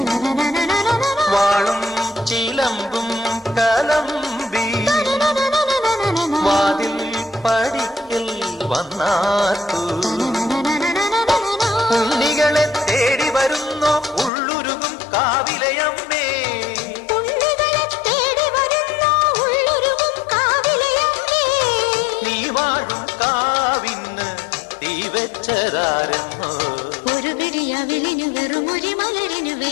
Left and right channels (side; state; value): right; drops out; at 14.3 s